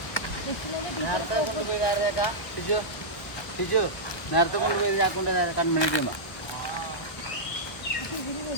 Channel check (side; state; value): right; late; 1.1 ms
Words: നേരത്തെ കൊണ്ടുപോയി ആക്കൊണ്ട് കൺമണി ചെയ്യുമ്പോൾ